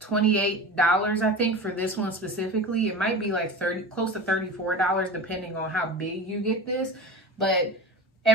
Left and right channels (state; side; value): normal; both; correlation 0.31